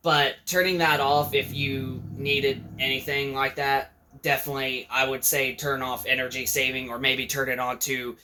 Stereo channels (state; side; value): identical; both; correlation 1.00